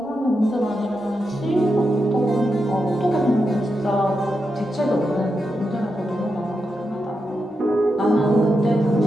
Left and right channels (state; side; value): normal; both; correlation 0.86